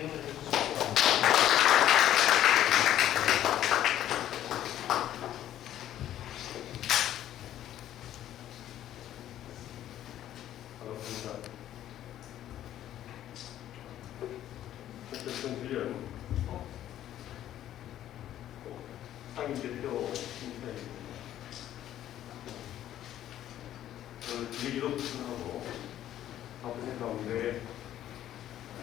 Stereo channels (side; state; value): right; quieter; 12.1 dB